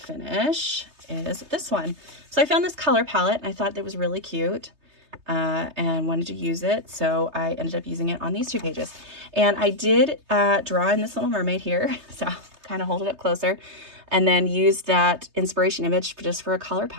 is this one. So I found this color palette, and I thought that was really cute. And wanted to use it, so I ended up using it on these 2 pages. And I did draw in this little mermaid here, so I'll kind of hold it up closer, and then used that inspiration image just for a color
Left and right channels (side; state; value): left; late; 3.3 ms